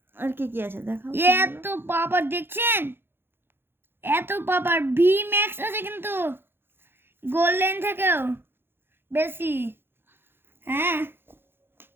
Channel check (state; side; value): late; left; 0.10 ms